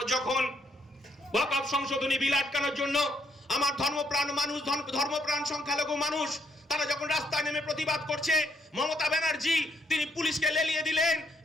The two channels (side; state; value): both; normal; correlation 0.73